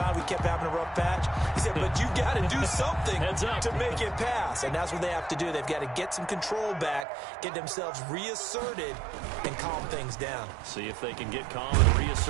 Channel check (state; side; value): drops out; left; at 7.1 s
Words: we kept having a rough patch. He said, but you got to do something to make it pass. And that's what they have to do. They've got to get some control back, get themselves reasserted, and calm things down. See if they can get calm and